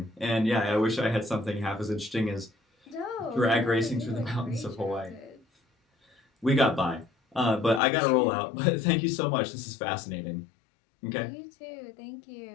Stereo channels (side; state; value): right; drops out; at 7.8 s